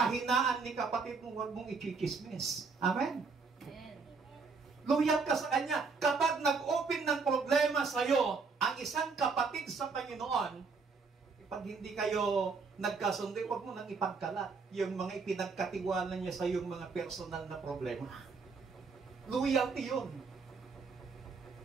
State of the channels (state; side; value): quieter; left; 4.7 dB